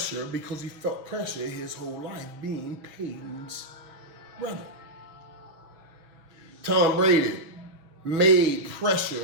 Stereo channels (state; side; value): late; left; 6.1 ms